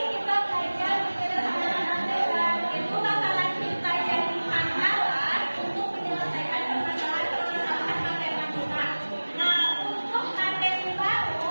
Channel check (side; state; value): both; inverted; correlation -1.00